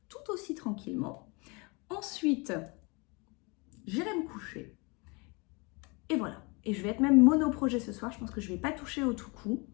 tout aussi tranquillement. Ensuite, j'irai me coucher. Et voilà. Et je vais être même mono-projet ce soir. Je pense que je ne vais pas toucher au tout coup.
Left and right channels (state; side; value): quieter; right; 29.1 dB